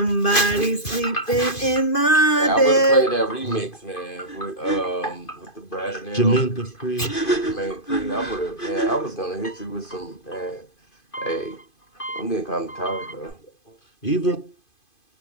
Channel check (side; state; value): right; late; 2.5 ms